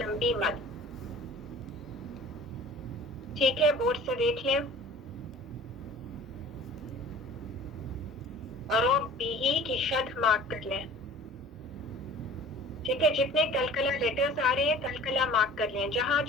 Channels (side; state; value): both; normal; correlation 0.45